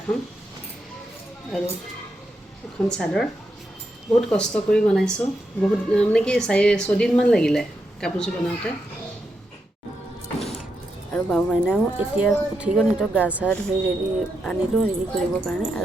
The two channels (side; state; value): both; normal; correlation 0.84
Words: আৰু এখন চাদৰ। বহুত কষ্ট কৰি বনাইছোঁ, বহুত মানে কি 4-6দিনমান লাগিলে কাপোৰযোৰ বনাওঁতে। আৰু বাবু মাইনাও এতিয়া উঠি গ'ল, সিহঁতক গা চা ধুই আনিলোঁ ৰেডি কৰিবৰ কাৰণে।